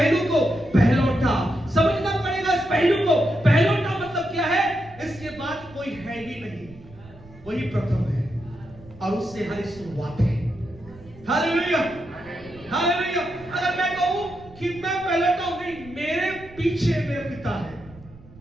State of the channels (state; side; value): noise; right; rumble, 22 dB below the sound